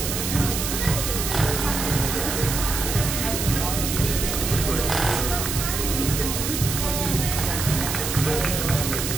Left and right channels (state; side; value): noise; right; hiss, 3 dB below the sound